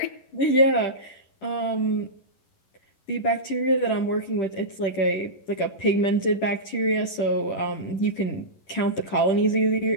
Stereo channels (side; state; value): right; late; 10 ms